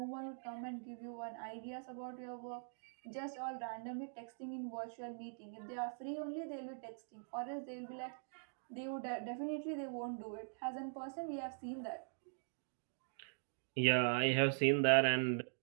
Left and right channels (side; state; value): left; silent; digital silence